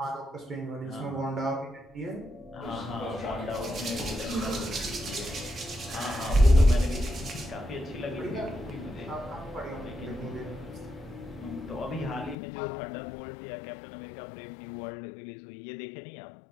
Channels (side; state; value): right; drops out; at 12.4 s